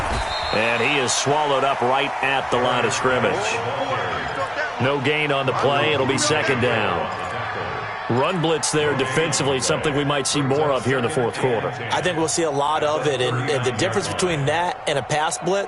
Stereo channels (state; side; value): identical; both; correlation 1.00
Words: And he is swallowed up right at the line of scrimmage. No gain on the play. It'll be 2nd down. Run blitz there defensively, something we might see more of here in the fourth quarter. I think we'll see a lot of it, and the difference between that and a pass